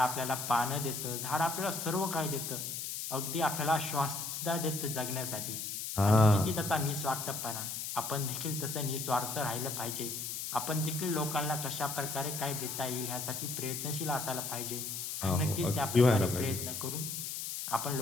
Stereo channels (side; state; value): left; noise; hiss, 5 dB below the sound